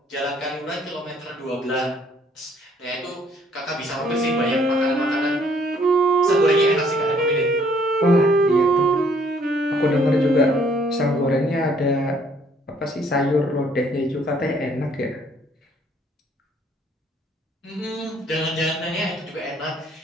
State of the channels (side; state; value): both; normal; correlation 0.63